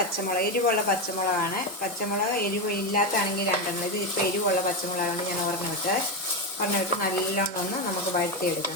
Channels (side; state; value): both; normal; correlation 0.11